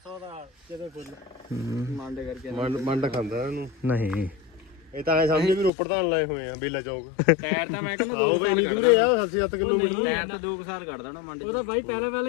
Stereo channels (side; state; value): right; drops out; at 5.7 s